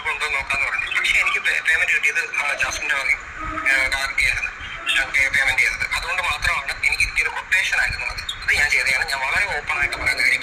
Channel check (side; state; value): both; identical; correlation 1.00